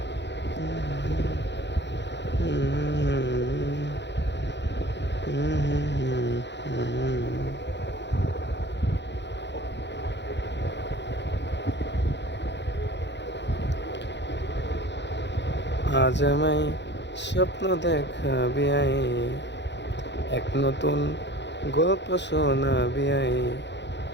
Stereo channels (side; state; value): right; late; 0.51 ms